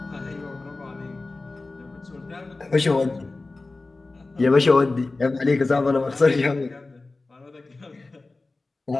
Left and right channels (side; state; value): right; quieter; 3.4 dB